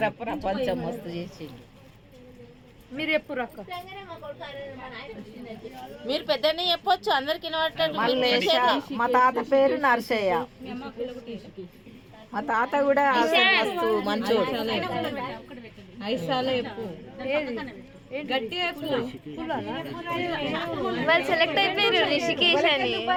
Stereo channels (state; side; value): identical; both; correlation 1.00